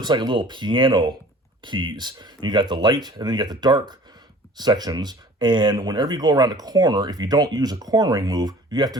like a little piano keys. You got the light, and then you got the dark sections. And whenever you go around a corner, if you don't use a cornering move, you have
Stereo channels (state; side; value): normal; both; correlation 0.47